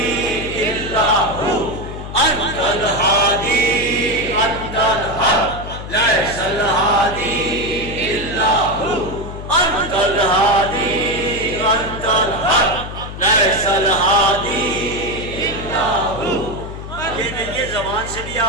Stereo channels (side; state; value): left; noise; hum, 10 dB below the sound